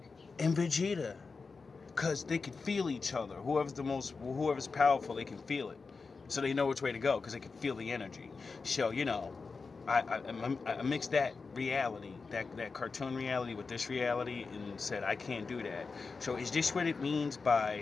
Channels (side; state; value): right; quieter; 4.5 dB